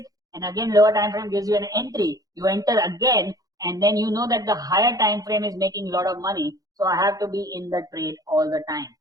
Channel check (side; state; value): left; late; 0.18 ms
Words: and again lower time frame gives you an entry, you enter again, and then you know that the higher time frame is making a lot of money, so I have to be in the trade all the time